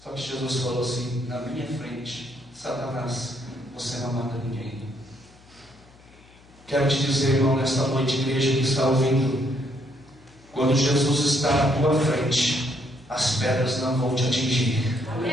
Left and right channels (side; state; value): left; noise; hum, 26 dB below the sound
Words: Só que Jesus falou assim: na minha frente, Satanás, você não mata ninguém. Quero te dizer, irmão, nesta noite, igreja que está ouvindo, quando Jesus está na tua frente, as pedras não vão te atingir.